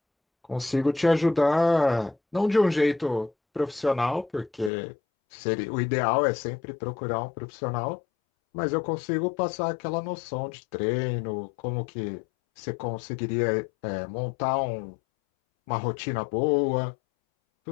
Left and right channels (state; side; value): drops out; right; at 4.7 s